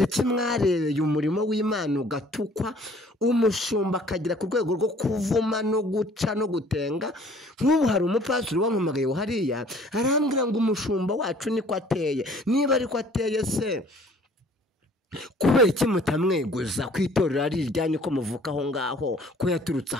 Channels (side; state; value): both; normal; correlation 0.55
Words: iki mwarebeye umurimo w'Imana ugatukwa, umushumba akagira ku rwego rwo kuvuma no guca no gutenga. Nk'ubu hari umupastori wampamagaye hariya arambwira ngo umushumba wacu niko ateye. Niba ariko ateye se, kubera iki mutamweguza ku itorero ari iryanyu ko muvuka aho ngaho, ko yaturutse